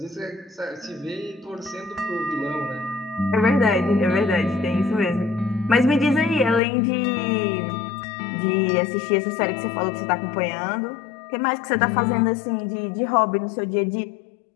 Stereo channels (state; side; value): drops out; right; at 6.6 s